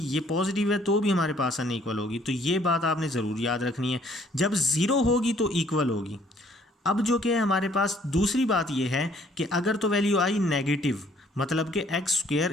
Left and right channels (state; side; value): normal; both; correlation 0.61